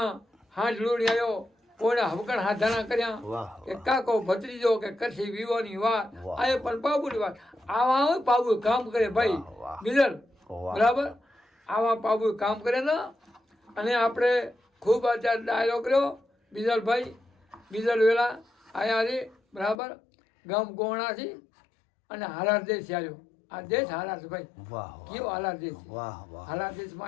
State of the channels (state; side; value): drops out; right; at 19.8 s